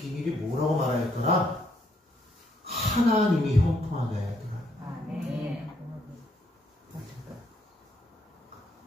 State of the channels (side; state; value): both; normal; correlation 0.72